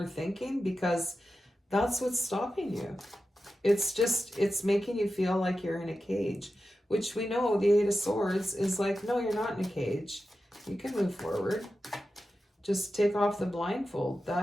because that's what's stopping you. It's making you feel like you're in a cage, which we know the 8 of Swords is like, no, you're not in a cage. You can move forward. Just take off the blindfold.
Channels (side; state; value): both; normal; correlation 0.92